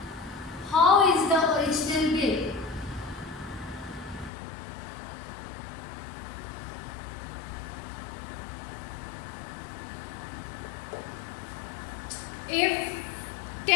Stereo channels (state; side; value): drops out; right; at 4.3 s